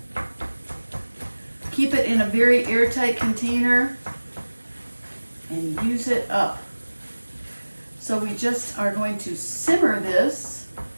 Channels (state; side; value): inverted; both; correlation -1.00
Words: keep it in a very airtight container and use it up. So we just are going to simmer this